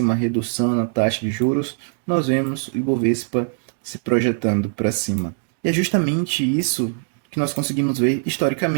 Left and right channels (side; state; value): left; silent; digital silence